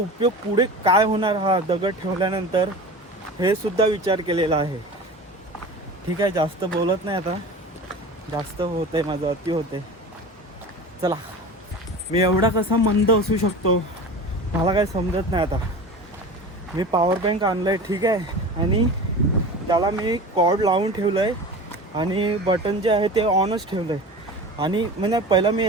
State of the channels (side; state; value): both; normal; correlation 0.34